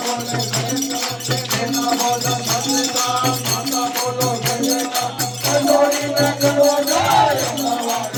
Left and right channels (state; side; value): identical; both; correlation 1.00